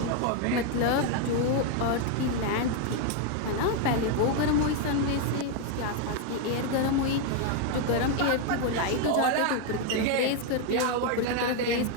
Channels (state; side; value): different; both; correlation 0.01